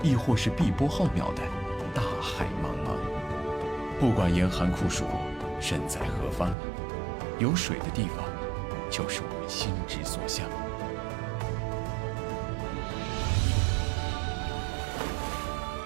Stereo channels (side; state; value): left; drops out; at 6.6 s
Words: 亦或是碧波浩渺的大海茫茫。不管严寒酷暑，身在何方，有水的地方，就是我们心之所向。